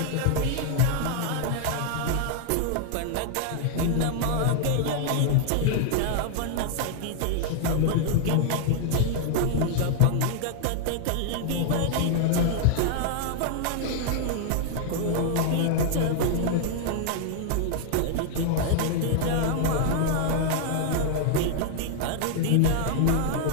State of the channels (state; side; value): different; both; correlation 0.00